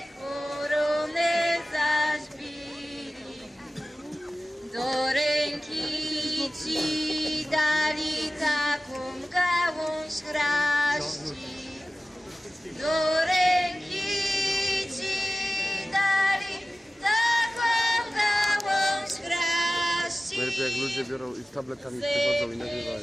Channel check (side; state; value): both; normal; correlation 0.96